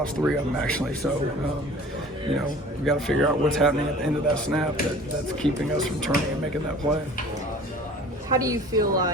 3 of them actually. So, we got to figure out what's happening at the end of that snap that's keeping us from turning and making that play. How do you feel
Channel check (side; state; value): both; normal; correlation 0.45